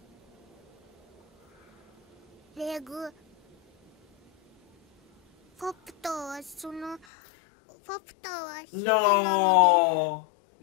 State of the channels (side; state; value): right; drops out; at 7.1 s